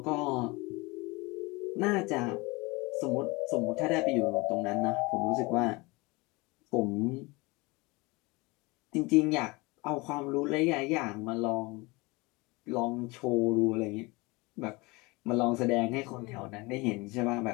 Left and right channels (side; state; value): right; quieter; 24.8 dB